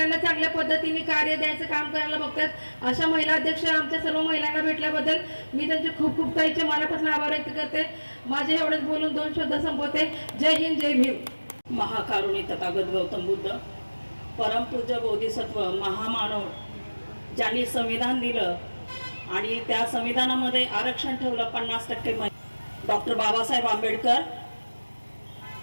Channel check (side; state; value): both; inverted; correlation -1.00